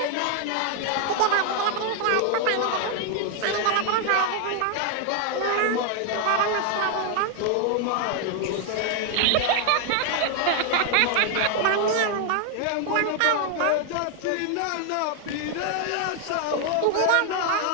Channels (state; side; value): different; both; correlation 0.00